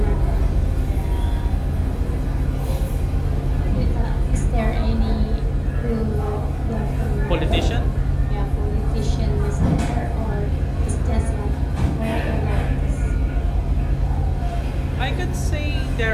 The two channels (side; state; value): both; identical; correlation 1.00